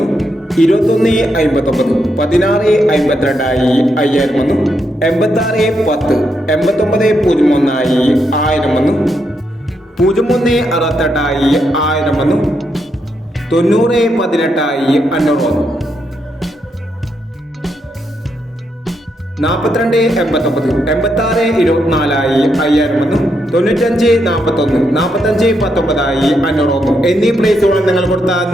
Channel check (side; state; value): both; normal; correlation 0.80